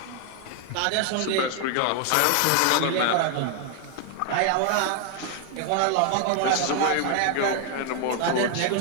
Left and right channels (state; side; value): different; both; correlation 0.00